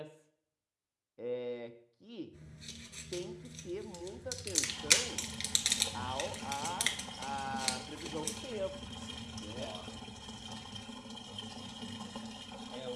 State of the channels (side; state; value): both; identical; correlation 1.00